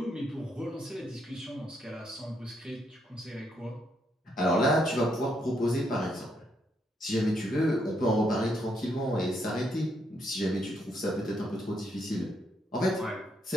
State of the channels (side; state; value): both; normal; correlation 0.76